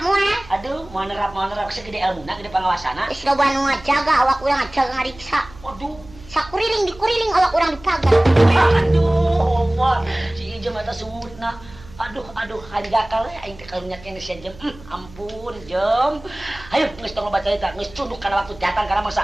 moal. Aduh, mau nerap segede ilmuna, gede pangawasana. Geus loba nu ngajaga awak urang ngajaga ngariksa. Waduh. Dikuriling awak urang dipagar. Aduh, Omar, si Ijem eta sumutna. Aduh, hanjakal we aing teh karunya kene sia Jem. Ampun, Jem. Hayu geus tong baca cerita, geus cunduk kana waktu datang kana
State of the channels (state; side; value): noise; right; hum, 20 dB below the sound